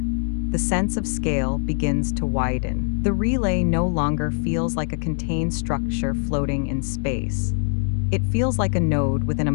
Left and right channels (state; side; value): silent; right; 64 dB below the other